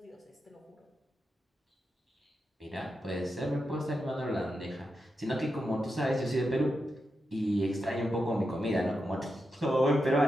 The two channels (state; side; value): normal; both; correlation 0.87